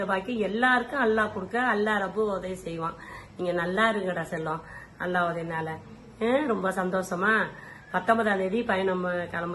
பாக்கியம் எல்லாருக்கும் அல்லாஹ் கொடுக்க, அல்லாஹ் ரப்பு உதவி செய்வான். நீங்க நல்லா இருங்கடா செல்லம், அல்லாஹ் உதவினால. ரொம்ப சந்தோஷமா 19ஆம் தேதி பயணம்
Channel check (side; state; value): both; identical; correlation 1.00